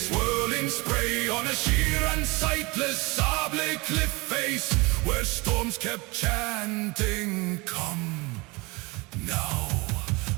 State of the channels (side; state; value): left; quieter; 25.6 dB